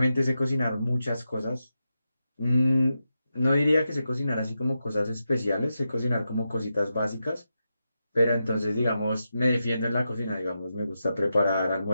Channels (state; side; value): inverted; both; correlation -0.88